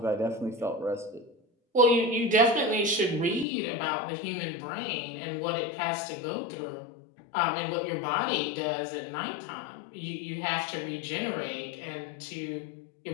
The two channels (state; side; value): drops out; right; at 3.5 s